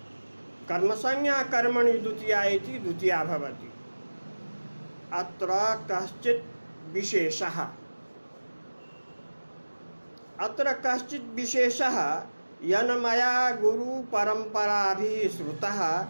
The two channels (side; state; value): both; inverted; correlation -1.00